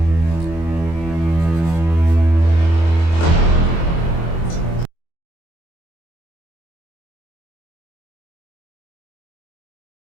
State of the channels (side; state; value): right; late; 24 ms